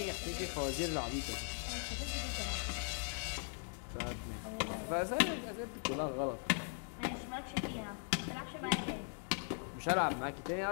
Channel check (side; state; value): right; silent; 51 dB below the other